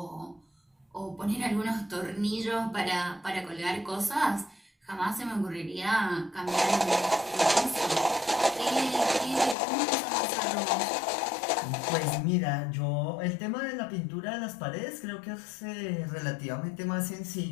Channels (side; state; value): right; drops out; at 9.6 s